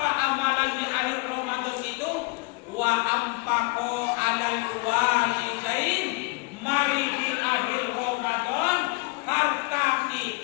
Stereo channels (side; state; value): right; quieter; 27.6 dB